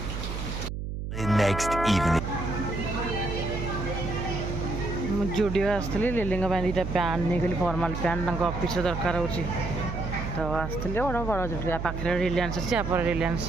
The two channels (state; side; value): noise; right; hum, 5 dB below the sound